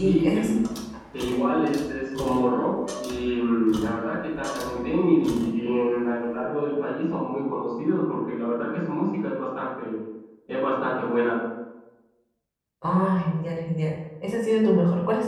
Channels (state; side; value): identical; both; correlation 1.00